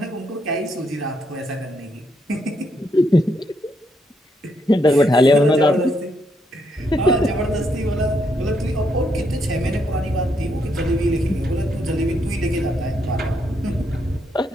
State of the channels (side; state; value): both; normal; correlation 0.77